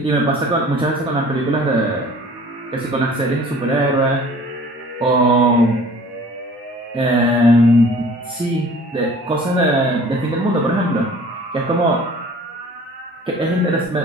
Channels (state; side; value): normal; both; correlation 0.48